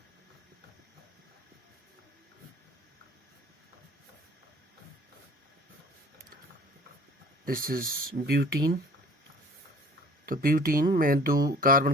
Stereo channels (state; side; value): normal; both; correlation 0.50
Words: this is butene. तो ब्यूटीन में 2 carbon